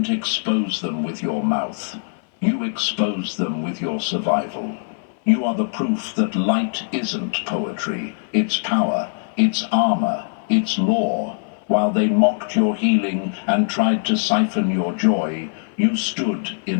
expose them with your mouth. You exposed them with your survival. You are the proof that light isn't poetry. It's power, it's armor, it's law. While they mocked your healing and tried to siphon your joy, you stood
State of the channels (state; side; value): silent; right; 58 dB below the other